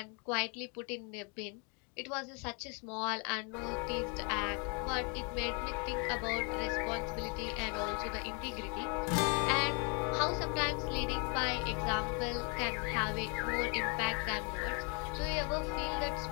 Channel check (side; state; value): right; quieter; 35.1 dB